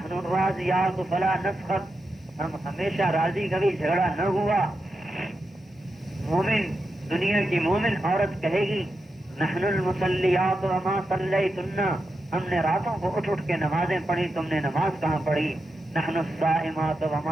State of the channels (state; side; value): normal; both; correlation 0.88